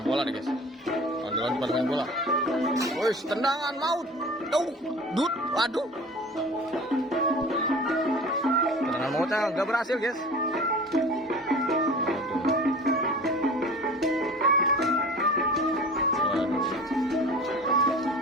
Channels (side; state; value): both; normal; correlation 0.40